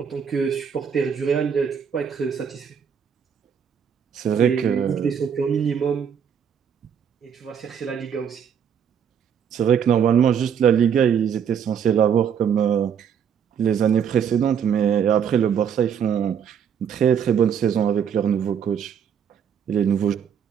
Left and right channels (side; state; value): left; quieter; 7.8 dB